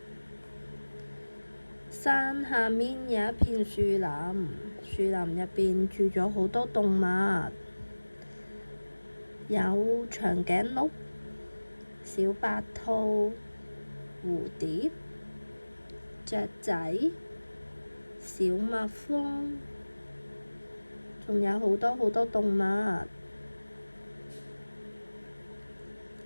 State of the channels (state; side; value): inverted; both; correlation -1.00